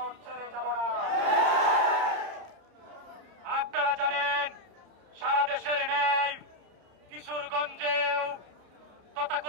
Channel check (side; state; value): left; late; 30 ms